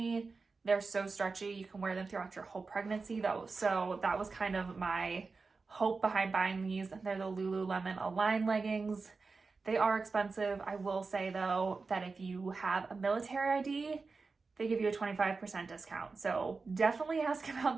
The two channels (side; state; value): left; quieter; 4.3 dB